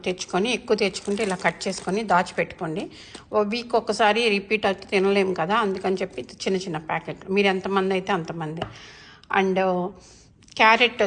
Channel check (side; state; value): both; identical; correlation 1.00